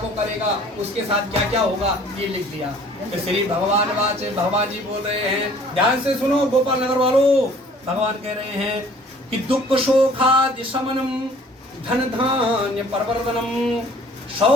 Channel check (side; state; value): both; normal; correlation 0.54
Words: करेगा उसके साथ क्या क्या होगा, ये लिख दिया। तो श्री भगवान जी बोल रहे हैं, ध्यान से सुनो गोपाल नगर वालों, भगवान कह रहे हैं कि दुख शोखादि शमनम धन धान्य परवर्धनम